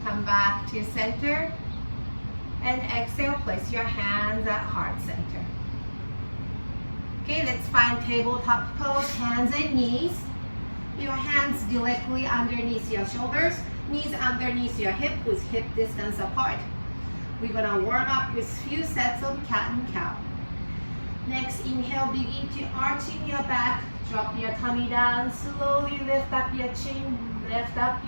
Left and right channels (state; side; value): inverted; both; correlation -1.00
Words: Come back to center and exhale, place your hands at heart center. Okay, let's find tabletop pose, hands and knees. Your hands directly underneath your shoulders, knees underneath your hip with hip distance apart. We're gonna warm up with few sets of cat and cow. Next, inhale, begin to arching your back, drop your tummy down, slowly lift up your chin, lift up